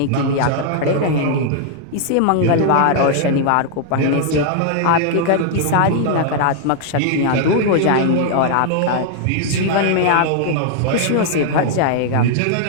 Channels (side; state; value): both; different; correlation 0.00